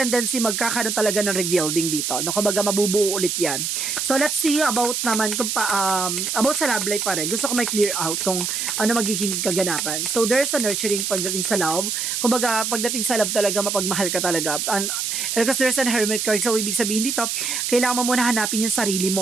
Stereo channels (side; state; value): right; noise; hiss, 1 dB below the sound